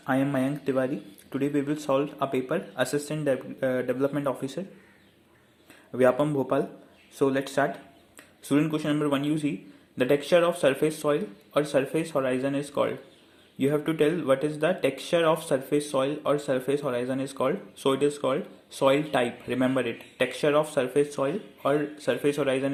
I am Mayank Tiwari. Today we will solve a paper, Assistant Development Officer, Vyapam Bhopal. So let's start. Student question number 1 you see, the texture of surface soil or surface horizon is called. You have to tell what is the texture of surface soil or surface horizon is called. So it is called soil type. Remember it. Texture of surface soil or surface horizon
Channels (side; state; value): both; identical; correlation 1.00